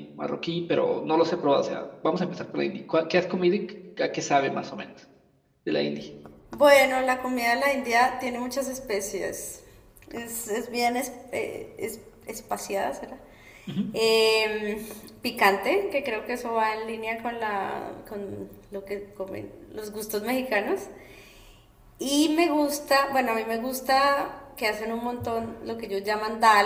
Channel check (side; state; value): both; identical; correlation 1.00